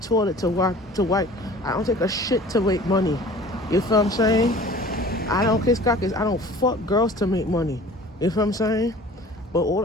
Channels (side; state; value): both; normal; correlation 0.45